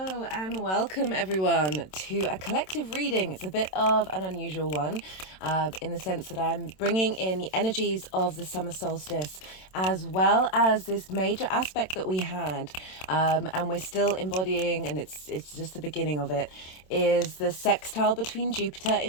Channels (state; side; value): late; right; 27 ms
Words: and welcome everyone to a collective reading. It's a bit of an unusual one in the sense that I'm bringing in the energies of the summer solstice as well as this major aspect that we had and we're still embodying, and it's just the beginning of it, is the sextile between Jupiter